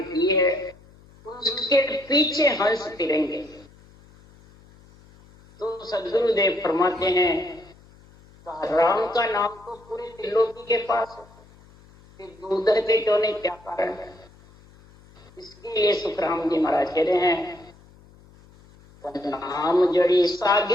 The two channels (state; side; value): noise; left; hum, 26 dB below the sound